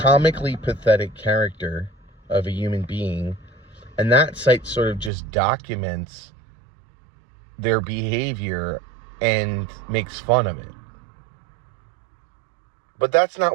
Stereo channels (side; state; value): left; drops out; at 5.1 s